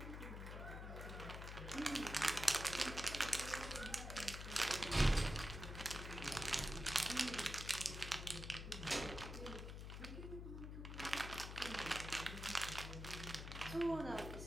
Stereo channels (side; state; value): left; noise; hum, 7 dB below the sound